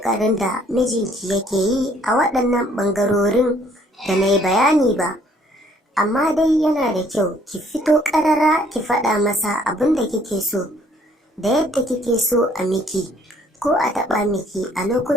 da mijinki yake yi a waɗannan ɓangarorin da na yi bayani ba, amma dai yana da kyau ki fito ƙarara ki faɗa masa abin da kike so da yadda kike so a miki ko a taɓa miki a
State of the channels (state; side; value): normal; both; correlation 0.62